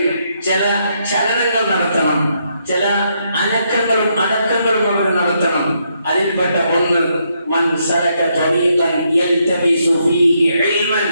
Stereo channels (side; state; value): both; inverted; correlation -0.77